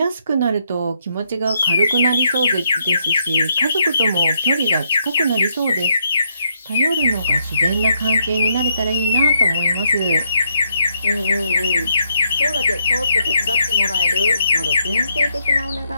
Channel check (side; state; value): both; inverted; correlation -0.75